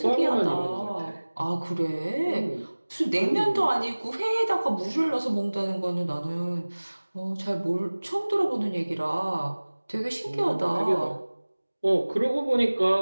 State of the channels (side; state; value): both; inverted; correlation -1.00